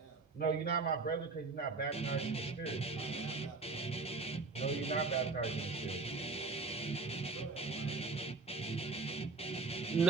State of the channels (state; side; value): quieter; left; 3.9 dB